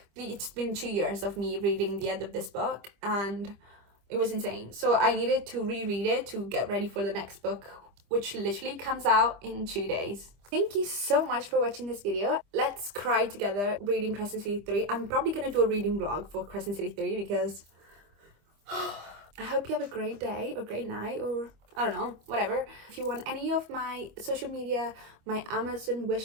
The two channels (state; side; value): late; left; 25 ms